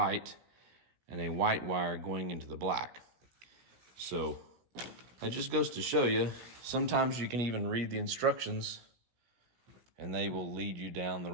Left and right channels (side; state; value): left; late; 17 ms